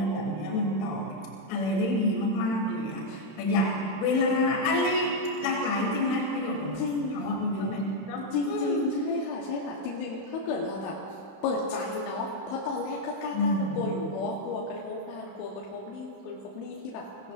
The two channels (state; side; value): late; right; 31 ms